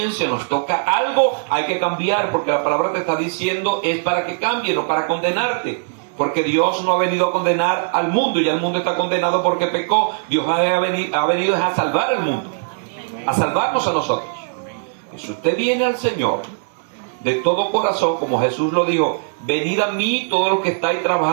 nos toca algo, hay que cambiar, porque la palabra te está diciendo es para que cambie, no para condenarte. Porque Dios no ha venido a condenar al mundo, ya el mundo está condenado porque pecó. Dios ha venido a salvar al mundo, a salvarnos a nosotros. Y si usted viene al Señor de todo corazón, como Jesús lo dijo: venid a mí todos los que estáis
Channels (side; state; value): left; silent; digital silence